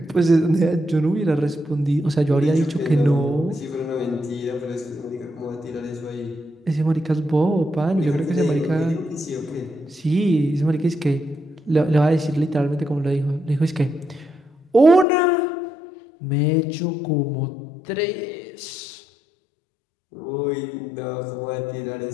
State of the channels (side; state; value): right; drops out; at 15.1 s